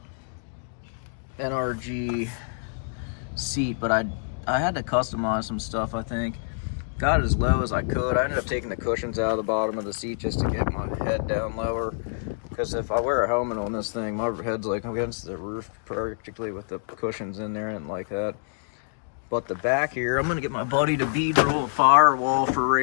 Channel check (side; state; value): right; silent; digital silence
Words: NRG seat, but I had to customize some stuff, I think. Got it as low as I could. I ended up taking the cushions out of the bottom of the seat just to get my head down lower, because if I wear a helmet on this thing, my head's like against the roof practically with the cushions in there and like that. But the back here, I'm gonna get my buddy to roll a firewall for